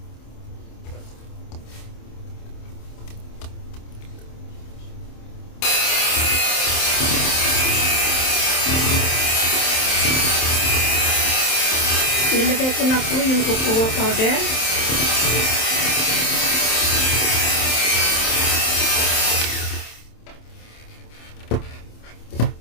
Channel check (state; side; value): late; right; 27 ms